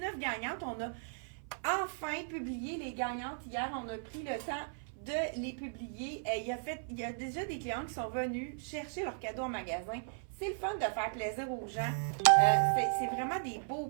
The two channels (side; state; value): left; silent; 54 dB below the other